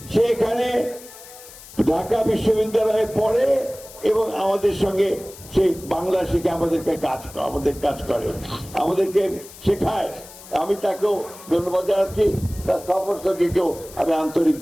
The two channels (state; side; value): noise; left; hiss, 18 dB below the sound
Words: সে এখানে ঢাকা বিশ্ববিদ্যালয়ে পড়ে এবং আমাদের সঙ্গে সে বাংলা শিখে আমাদের কাজ করে, আমাদেরকে শেখায়। আমি তাকেও ধন্যবাদ জানাচ্ছি, তার সফরসঙ্গীকেও আমি আন্তরিক